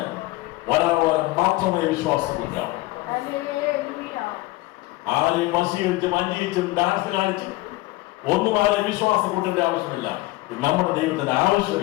ഒരാളെ മാത്രമേ വിശ്വാസം കൊണ്ടാവും. ആരെയും വശീകരിച്ചും അന്വേഷിച്ചും ഡാൻസ് കാണിച്ചും ഒന്നും ആരെ വിശ്വാസം കൊണ്ടേണ്ട ആവശ്യമില്ല. നമ്മുടെ ദൈവത്തിന്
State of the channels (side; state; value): right; quieter; 19.4 dB